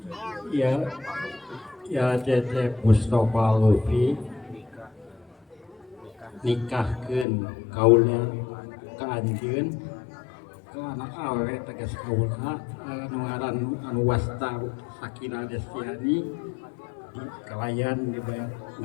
Ya cecep Mustafa Lufi nikahkeun kaula ka anjeun ka anak awewe tegas kaula anu ngaran anu wasta Sakinah Destiani di kalayan dibayar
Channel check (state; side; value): drops out; right; at 7.2 s